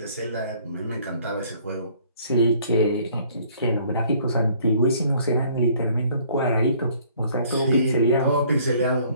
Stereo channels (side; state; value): both; inverted; correlation -0.59